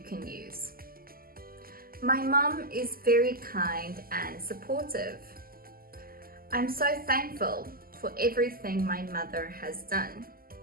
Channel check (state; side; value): late; left; 0.42 ms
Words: can use. My mom is very kind and supportive. I'm so thankful for everything my mother has done.